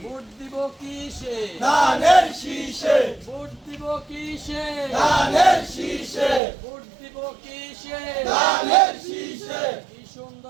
ভোট দিব কিসে, ধানের শীষে, ভোট দিব কিসে, ধানের শীষে, ভোট দিব কিসে, ধানের শীষে। কি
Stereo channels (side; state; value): left; drops out; at 6.4 s